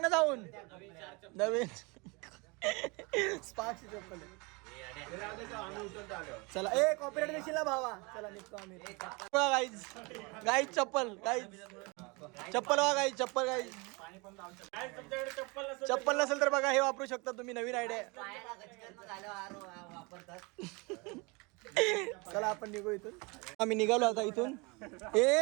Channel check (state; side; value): quieter; left; 28.1 dB